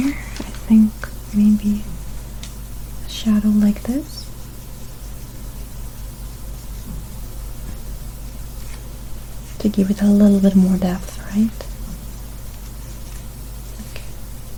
I think maybe a shadow like this. To give it a little bit more depth, right? Okay.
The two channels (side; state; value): both; identical; correlation 1.00